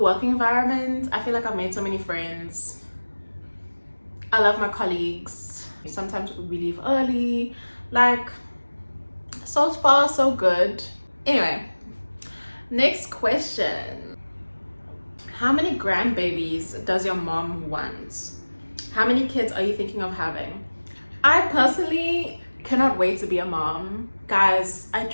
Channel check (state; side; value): inverted; both; correlation -1.00